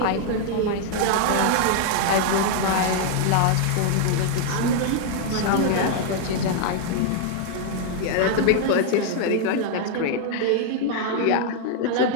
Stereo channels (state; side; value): different; both; correlation 0.00